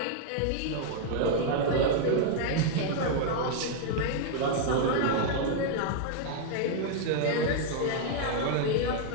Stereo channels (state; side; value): different; both; correlation 0.00